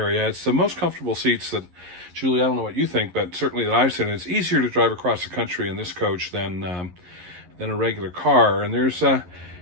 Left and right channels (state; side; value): late; left; 11 ms